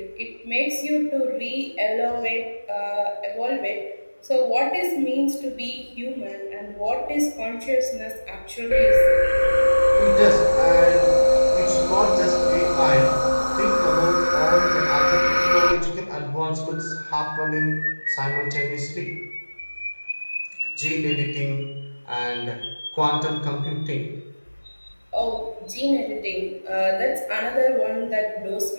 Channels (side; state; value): both; inverted; correlation -1.00